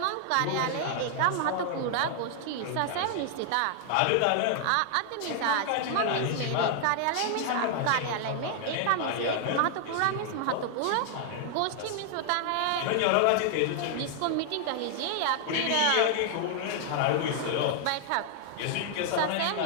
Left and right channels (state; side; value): different; both; correlation 0.00